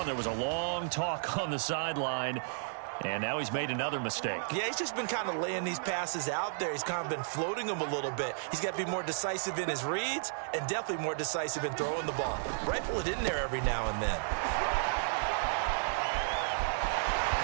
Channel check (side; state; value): left; silent; 56 dB below the other